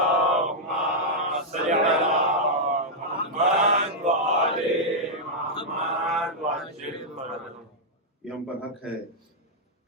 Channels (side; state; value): both; normal; correlation -0.06